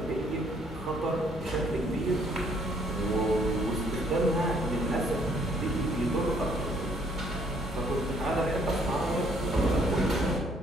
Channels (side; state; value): both; normal; correlation 0.64